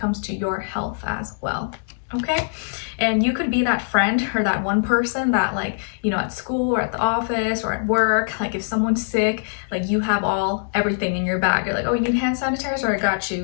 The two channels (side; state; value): right; silent; digital silence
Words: to your health as well. Okay, and you could be that friend or that one person that at school or at the office or at work, like if someone's sick, like you have everything in your bag. You're like, oh, you need hand sanitizer? I got